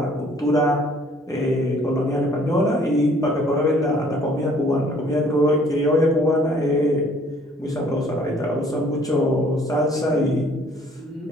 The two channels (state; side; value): normal; both; correlation 0.58